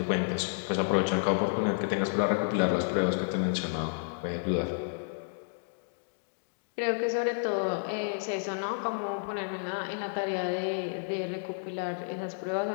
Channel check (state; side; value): silent; right; digital silence